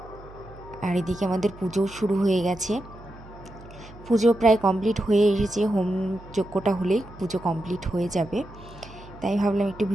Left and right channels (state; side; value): noise; right; hum, 19 dB below the sound